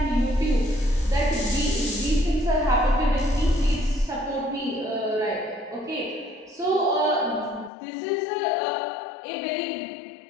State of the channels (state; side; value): drops out; right; at 7.7 s